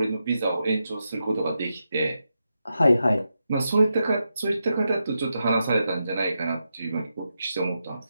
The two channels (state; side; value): inverted; both; correlation -0.87